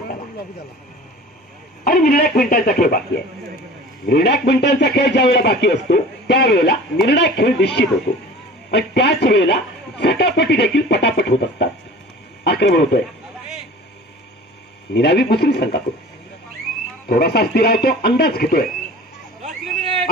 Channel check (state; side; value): normal; both; correlation 0.42